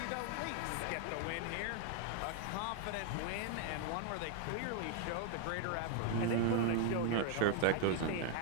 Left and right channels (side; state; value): both; different; correlation 0.00